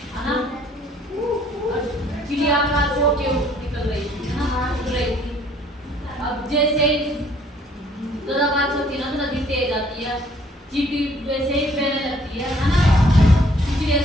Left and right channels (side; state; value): both; normal; correlation 0.60